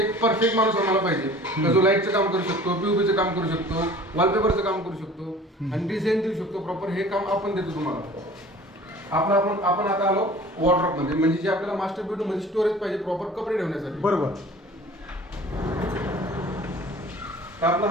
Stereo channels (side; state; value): both; normal; correlation 0.46